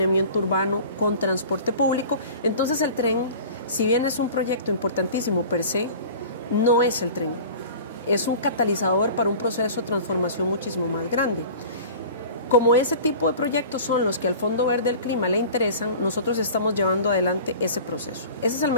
urbano con transporte público. Entonces el tren, si bien es un proyecto importantísimo per se, no es el tren, es un catalizador para un proceso de transformación muchísimo más grande. Como ese tipo de proyectos son los que al Fondo Verde del Clima le interesan, nosotros estamos llevando adelante ese proceso. Ese es el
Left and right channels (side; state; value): both; inverted; correlation -0.41